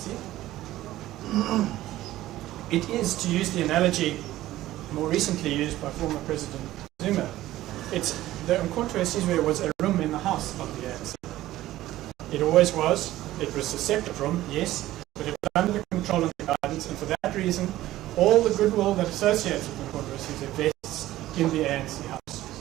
It is, to use the analogy more recently used by former President Zuma, it's the Umkhonto weSizwe was a room in the house of the ANC. It always was. It was a separate room, yes, but it was under the control and the guidance, and for that reason, all the goodwill that associates with Umkhonto weSizwe vests in the ANC house.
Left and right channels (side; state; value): left; quieter; 15.2 dB